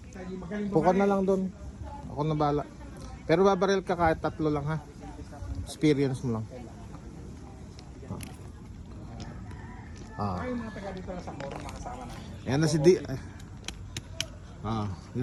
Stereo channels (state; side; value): identical; both; correlation 1.00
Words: Puka na lang doon. Ako na bala. Pero babaril ka kahit 3 lang ha. Experience mo lang. Ayan na si D.